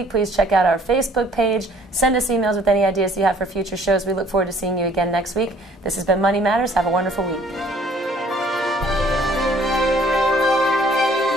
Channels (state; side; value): normal; both; correlation 0.57